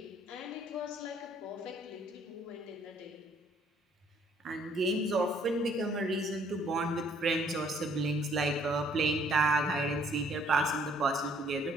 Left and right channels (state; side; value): normal; both; correlation 0.62